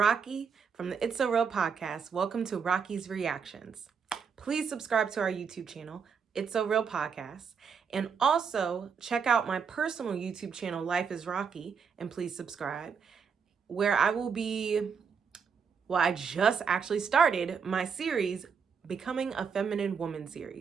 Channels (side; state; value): left; quieter; 6.3 dB